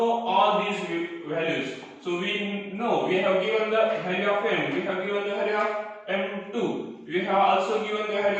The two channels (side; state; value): both; identical; correlation 1.00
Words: all these values. So we know we have given the value of m, we have given the value of m2, we have also given the